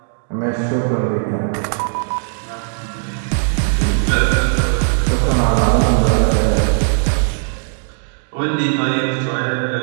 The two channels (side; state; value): left; silent; digital silence